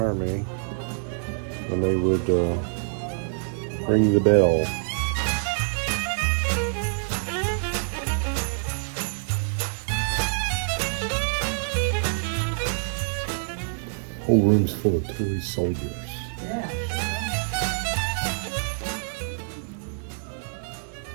and they would ring the bell. Whole room's full of toy soldiers.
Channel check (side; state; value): left; silent; 61 dB below the other